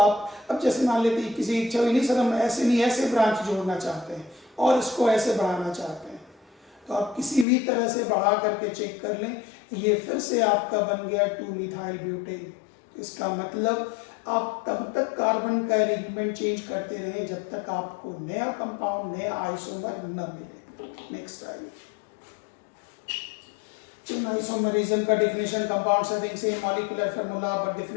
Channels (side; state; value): right; drops out; at 7.5 s